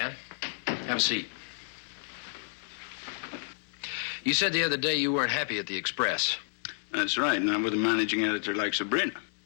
Have a seat. You said the other day you weren't happy at the Express. That's right, not with a managing editor like Sabrina.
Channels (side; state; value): right; silent; digital silence